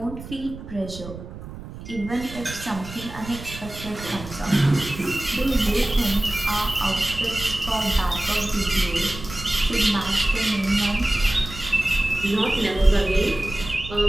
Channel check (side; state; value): right; noise; rumble, 13 dB below the sound